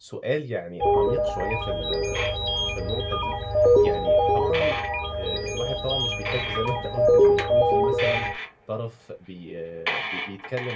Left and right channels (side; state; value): both; identical; correlation 1.00